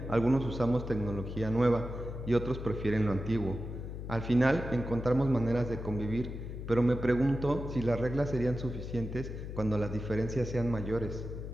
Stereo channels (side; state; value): left; noise; hum, 8 dB below the sound